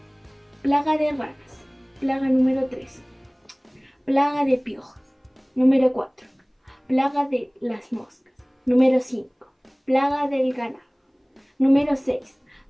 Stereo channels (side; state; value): both; identical; correlation 1.00